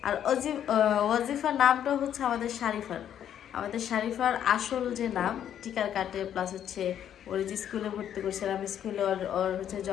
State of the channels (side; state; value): right; quieter; 9.9 dB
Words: আর ওয়াজিফা নামটা হচ্ছে আমাদের শারিফার আসল যে নাম, টিকার কাটে প্লাস হচ্ছে ওর যে স্কুলে ভর্তি করছিলাম, স্কুলে ওর হচ্ছে